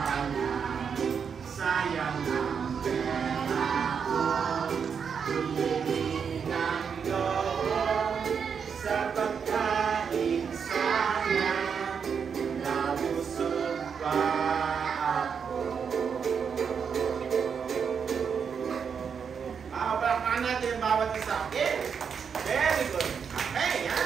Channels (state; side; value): quieter; left; 6.7 dB